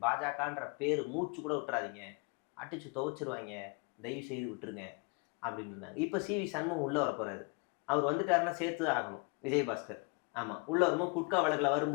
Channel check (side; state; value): right; quieter; 32.6 dB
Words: பாஜகன்ற பேர் மூச்சு கூட விட்டுறாதீங்க, அடிச்சு துவைச்சிருவாங்க, தயவு செய்து விட்டுருங்க அப்படின்னு இருந்தாங்க. இப்போ சிவி சண்முகம் உள்ளே வர போகிறாரு. அவர் வந்துட்டாருன்னா சேர்த்து தான் ஆகணும். விஜயபாஸ்கர் ஆமாம் உள்ளே வரும்போது குட்கா வழக்கில்